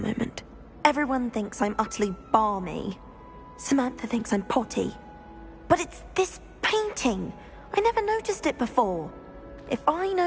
Everyone thinks I'm utterly balmy. Samantha thinks I'm potty. But it's this painting. I never noticed it before. If I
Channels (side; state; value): both; identical; correlation 1.00